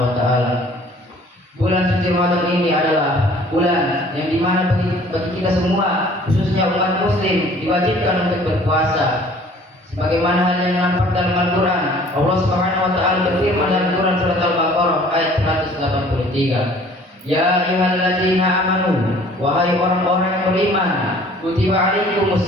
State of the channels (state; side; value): normal; both; correlation 0.53